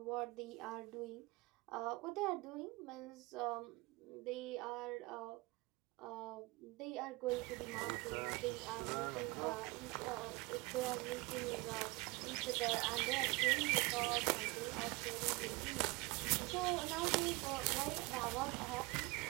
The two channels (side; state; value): left; quieter; 24.0 dB